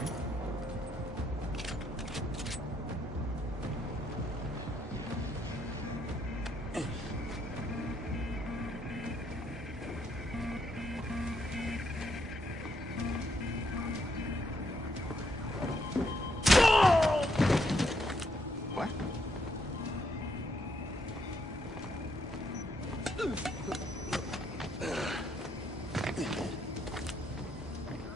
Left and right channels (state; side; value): normal; both; correlation 0.75